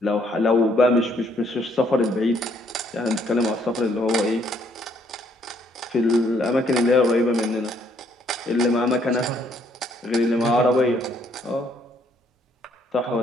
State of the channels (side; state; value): both; normal; correlation 0.67